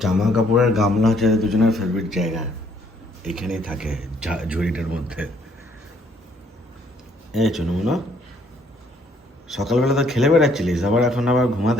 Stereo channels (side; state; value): both; normal; correlation 0.66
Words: জামা কাপড়ের গামলা হচ্ছে দুজনের ফেভারিট জায়গা, এখানেই থাকে ঝুড়িটার মধ্যে। এই চুনুমুনো, সকালবেলা তো খেলে বেড়াচ্ছিলিস, আবার এখন আবার